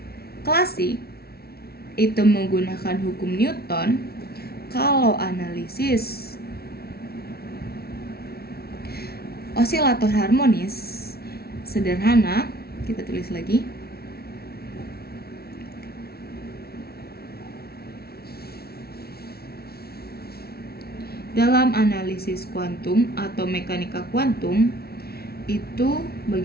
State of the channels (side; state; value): right; late; 0.45 ms